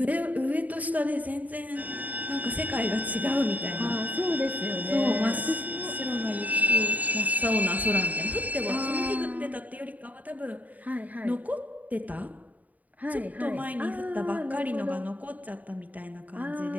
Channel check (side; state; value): left; late; 0.075 ms